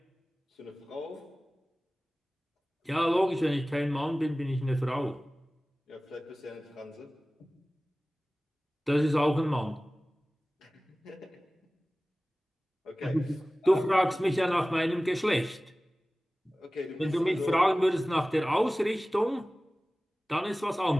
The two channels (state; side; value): normal; both; correlation 0.98